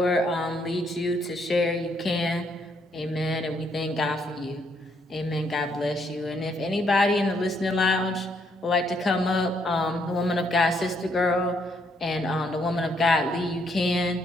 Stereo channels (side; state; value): both; normal; correlation 0.72